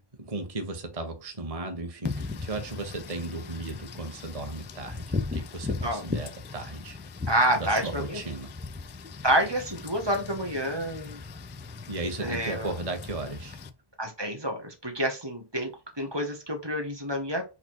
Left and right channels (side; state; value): left; late; 1.1 ms